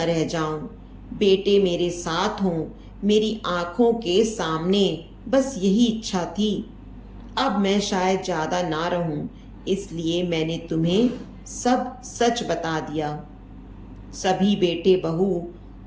रह जाऊं, बेटे मेरे साथ हों, मेरी आंखों के सामने, बस यही इच्छा थी। अब मैं शायद ज्यादा ना रहूं, इसलिए मैंने तुम्हें सब सच बता दिया। सभी बेटे बहू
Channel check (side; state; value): both; identical; correlation 1.00